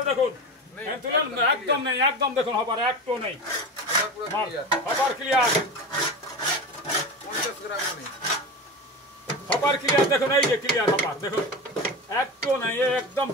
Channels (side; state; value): both; normal; correlation 0.27